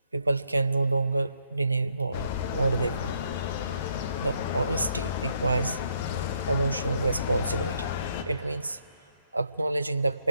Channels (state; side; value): inverted; both; correlation -0.72